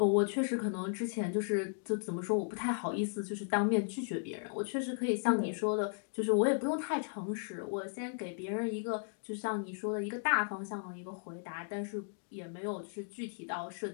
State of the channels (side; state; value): right; silent; digital silence